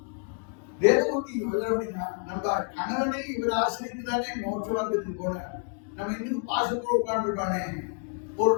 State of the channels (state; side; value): quieter; right; 39.5 dB